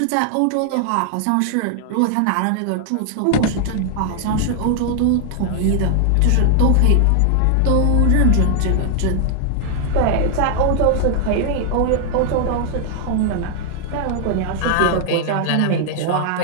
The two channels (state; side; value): different; both; correlation 0.00